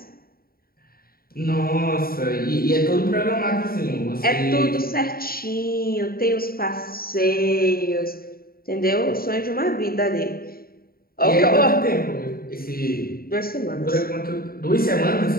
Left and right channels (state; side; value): late; right; 0.43 ms